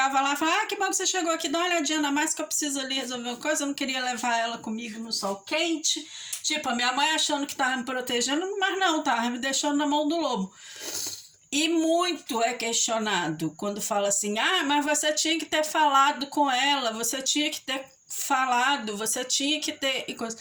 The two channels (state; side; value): identical; both; correlation 1.00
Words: lá e falava: que bom que você chegou aqui, dá uma olhadinha na mais que eu preciso ali resolver uma coisa. Eu não queria levar ela comigo no sol quente. Tipo, a minha mãe achando que estava me protegendo, mas não, estava me deixando na mão do lobo. E muito é questionado quando fala assim: mas você tinha que ter falado com ela, você tinha que ter falado, você tinha que ter...